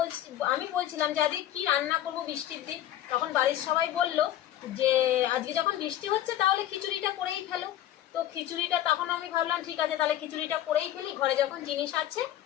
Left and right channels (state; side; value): quieter; right; 12.6 dB